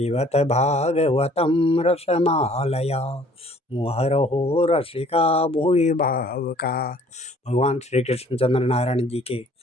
भागवतं रसमालया मुहरहो रसिका भुवि भावुका। भगवान श्री कृष्णचंद्र नारायण जी के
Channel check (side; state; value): both; normal; correlation 0.56